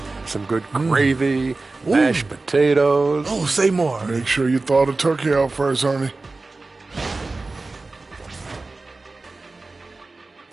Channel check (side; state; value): left; quieter; 3.5 dB